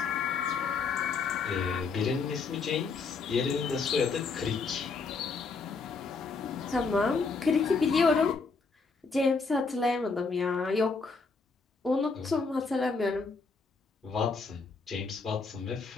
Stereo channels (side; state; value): right; quieter; 4.6 dB